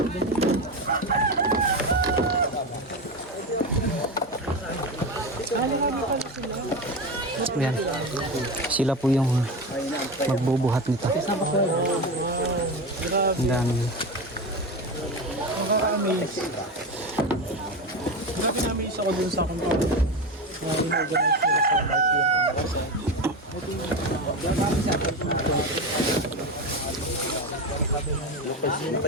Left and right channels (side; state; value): both; normal; correlation 0.20